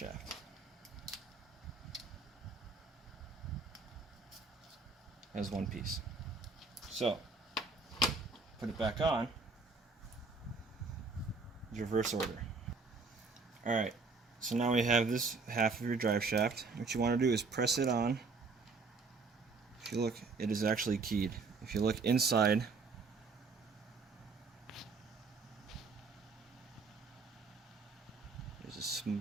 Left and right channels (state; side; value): quieter; left; 4.3 dB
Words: As one piece. So, put it back on, reverse order. Alright. So now we have this half of your drive shaft. What you want to do is press it on. If you look, it is actually keyed. If you look inside, there's a